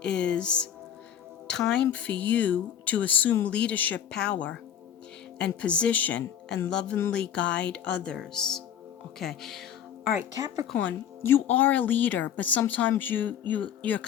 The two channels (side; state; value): right; quieter; 9.4 dB